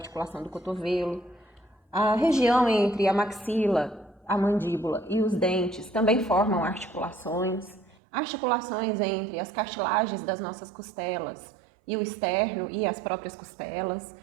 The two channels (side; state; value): left; drops out; at 8.0 s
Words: do cotovelo, a região entre a maxila, a mandíbula e os dentes também formam articulações, articulações entre as cartilagens das nossas costelas e o externo e as próprias costelas.